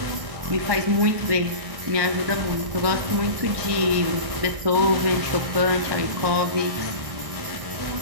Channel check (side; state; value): left; late; 1.6 ms